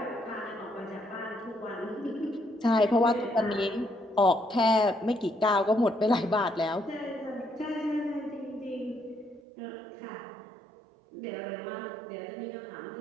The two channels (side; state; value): left; drops out; at 9.4 s